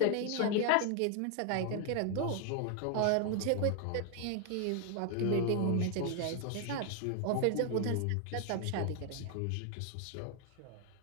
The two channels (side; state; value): both; different; correlation 0.00